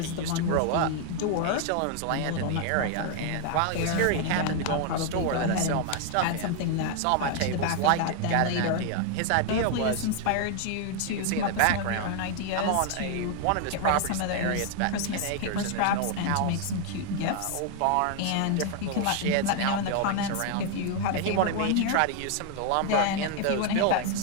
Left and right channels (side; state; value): both; different; correlation 0.00